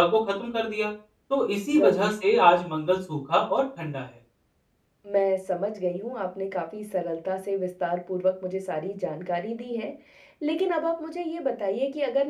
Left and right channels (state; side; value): identical; both; correlation 1.00